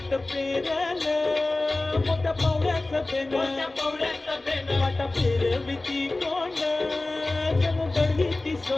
पेरलं मोठ्या पावड्याचं पेन, वाटा फिरविती कोण जणू दळवीती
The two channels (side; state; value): right; quieter; 3.0 dB